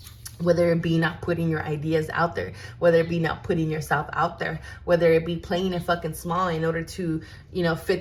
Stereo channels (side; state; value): both; identical; correlation 1.00